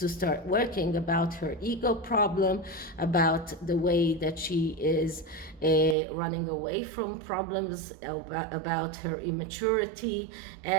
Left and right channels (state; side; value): drops out; left; at 6.0 s